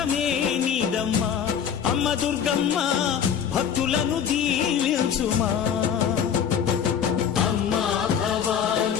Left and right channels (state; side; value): quieter; right; 8.1 dB